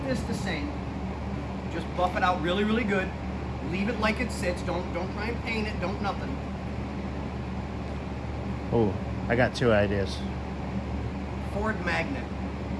this the same, just buff it out really, really good. Leave it like it sits. Don't try and paint it. Don't nothing. Ooh, I got two ideas. Ford Magnet.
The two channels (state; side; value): identical; both; correlation 1.00